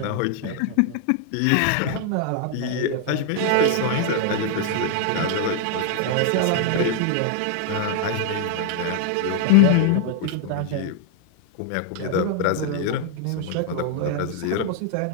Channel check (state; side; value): different; both; correlation 0.00